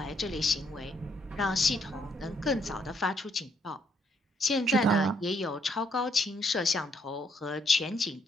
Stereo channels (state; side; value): normal; both; correlation 0.72